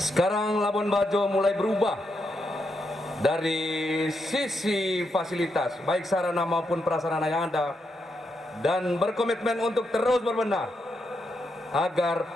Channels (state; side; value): normal; both; correlation 0.82